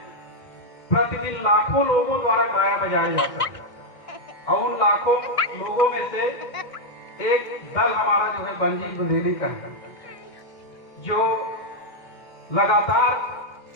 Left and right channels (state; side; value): late; right; 2.1 ms